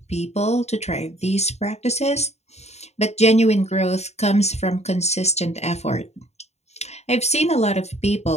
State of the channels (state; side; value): late; right; 0.32 ms